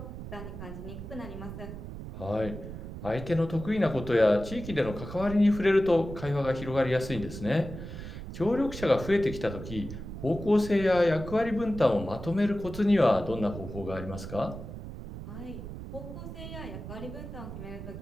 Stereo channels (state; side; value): noise; right; rumble, 10 dB below the sound